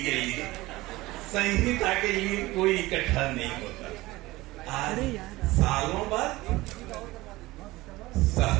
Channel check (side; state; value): left; quieter; 19.3 dB